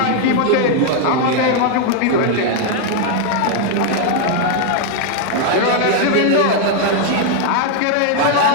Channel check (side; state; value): both; different; correlation 0.00